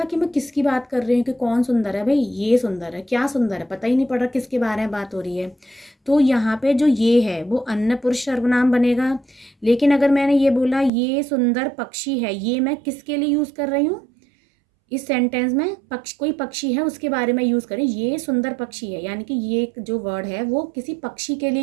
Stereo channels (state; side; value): drops out; left; at 10.9 s